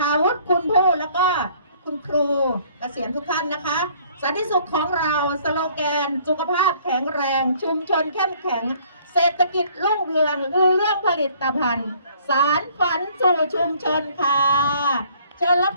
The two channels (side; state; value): both; inverted; correlation -0.59